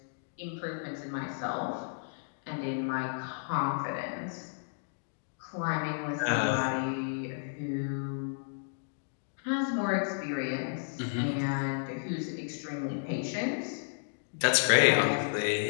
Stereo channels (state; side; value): silent; right; digital silence